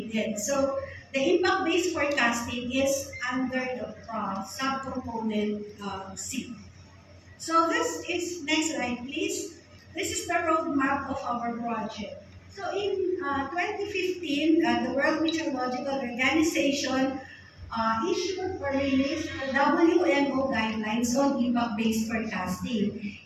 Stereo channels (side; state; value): both; identical; correlation 1.00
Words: So the impact-based forecasting is under the subcomponent C. So this is, next slide please. This is the roadmap of our project. So in 2015, the World Meteorological Organization issued or released the WMO guidelines on impact-based forecasting.